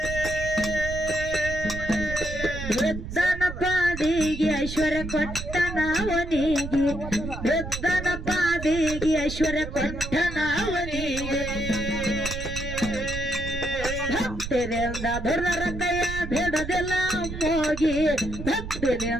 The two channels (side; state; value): right; noise; rumble, 8 dB below the sound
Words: ವೃದ್ಧನ ಪಾದಿಗೆ ಐಶ್ವರ್ಯ ಕೊಟ್ಟನವನಿಗೆ ವೃದ್ಧನ ಪಾದಿಗೆ ಐಶ್ವರ್ಯ ಕೊಟ್ಟನವನಿಗೆ ಭಕ್ತಿನಿಂದ ದುರ್ದರ ಕೈಯ ಬಿಡದಿಲ್ಲ ಮೋಗಿ